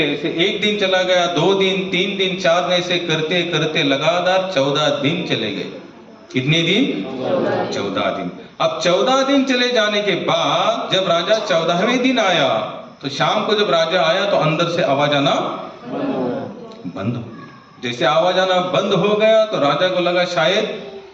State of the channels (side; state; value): both; identical; correlation 1.00